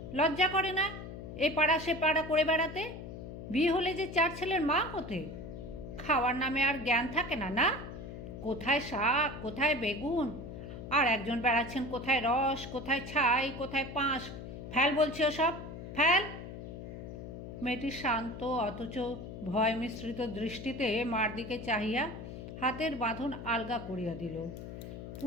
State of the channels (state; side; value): noise; left; hum, 10 dB below the sound